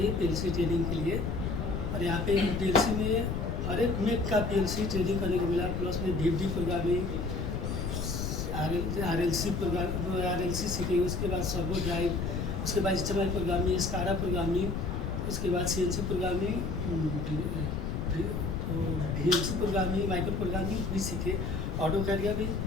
पीएलसी ट्रेनिंग के लिए। और यहाँ पे पीएलसी में हर एक मेक का पीएलसी ट्रेनिंग करने को मिला, प्लस में डीपडी प्रोग्रामिंग, आरएलसी सीखे, उसके बाद सर्वो ड्राइव, उसके बाद एचएमआई प्रोग्रामिंग, स्काडा प्रोग्रामिंग, उसके बाद CNC programming, VLC programming, micro programming भी सीखे। ऑटो कैड का भी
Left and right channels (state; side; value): noise; left; rumble, 2 dB below the sound